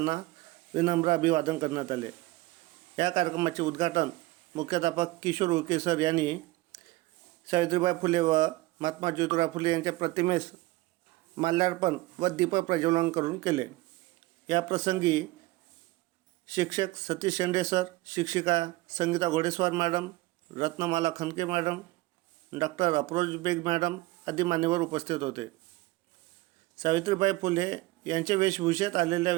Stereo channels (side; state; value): left; quieter; 19.3 dB